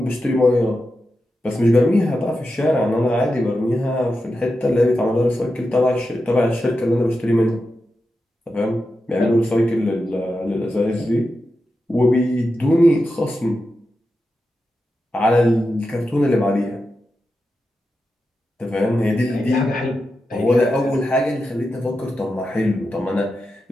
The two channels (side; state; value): both; normal; correlation 0.90